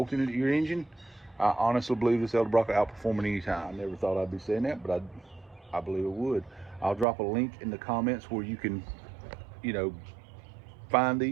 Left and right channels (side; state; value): left; drops out; at 7.1 s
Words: it to your engine, I honestly believe this Edelbrock will outperform it anytime. I never thought I'd be saying that, but I believe it would. I'll drop a link in the comments where you can, find